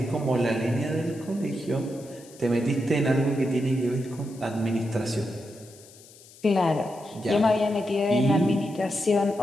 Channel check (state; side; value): noise; left; hiss, 22 dB below the sound